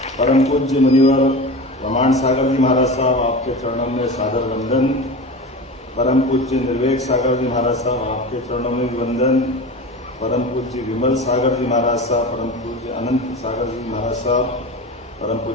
परम पूज्य मुनिवर प्रमाण सागर जी महाराज साहब, आपके चरणों में सादर वंदन। परम पूज्य निर्वेक सागर जी महाराज साहब, आपके चरणों में भी वंदन। परम पूज्य विमल सागर जी महाराज साहब, परम पूज्य अनंत सागर जी महाराज साहब, परम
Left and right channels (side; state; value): both; normal; correlation 0.30